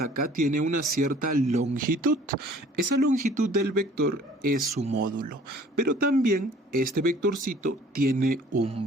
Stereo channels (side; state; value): both; normal; correlation 0.53